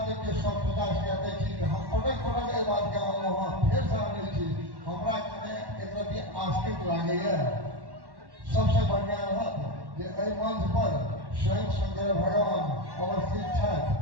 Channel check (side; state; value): left; late; 1.1 ms